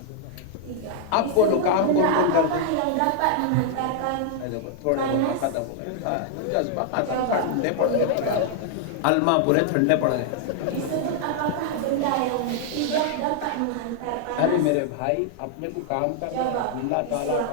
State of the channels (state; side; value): different; both; correlation 0.00